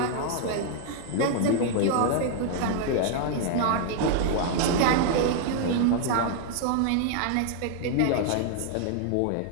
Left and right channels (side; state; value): both; different; correlation 0.00